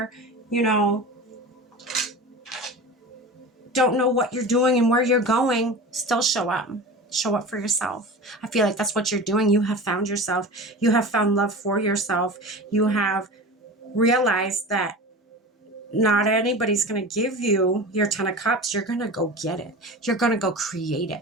don't know what you're doing and where you're going? Still show up. Show up for yourself. I feel like that's what you're doing. You have found yourself. You have found love for yourself. You have realized that not anybody's going to give you your 10 of cups. You're going to go get it. You're going to go create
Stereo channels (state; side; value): normal; both; correlation 0.32